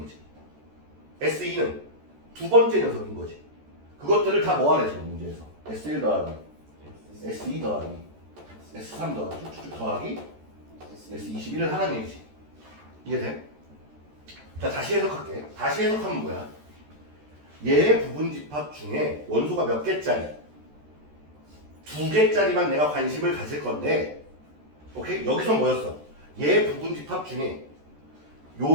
거지. S2는 두 번째 녀석인 거지. 그것들을 다 모아내 지금 문제에서. S1 더하기 S2 더하기 S3 더하기 쭉쭉 더하기 S21을 하라는 얘기지. 이해돼? 자, 다시 해석할게. 다시 해석하면 뭐야? 얘의 부분집합 중에 원소가 몇 개짜리? 2개짜리만 내가 관심을 가질 건데, 오케이? 여기서 뭐였어? 얘의 부분집합 중에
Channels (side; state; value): left; late; 14 ms